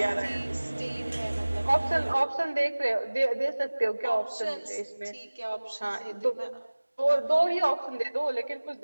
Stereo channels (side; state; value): both; inverted; correlation -1.00